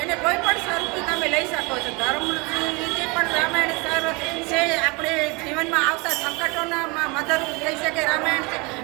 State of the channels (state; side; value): quieter; left; 27.6 dB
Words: એને કોઈ પણ સ્વરૂપથી તમે લઈ શકો છો. ધર્મની રીતે પણ રામાયણ સર છે. આપણે જીવનમાં આવતા સંકટોના મદદરૂપ થઈ શકે રામાયણ છે.